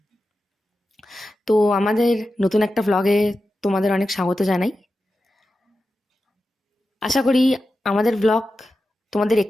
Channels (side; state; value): both; normal; correlation 0.91